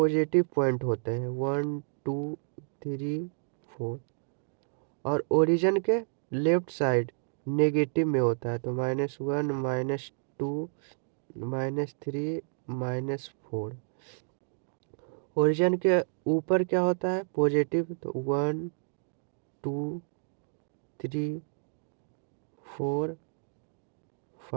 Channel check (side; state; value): left; silent; digital silence